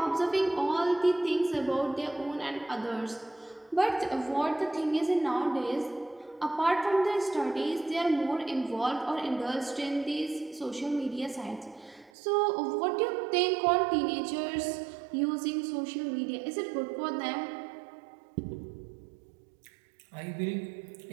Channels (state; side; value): drops out; left; at 12.1 s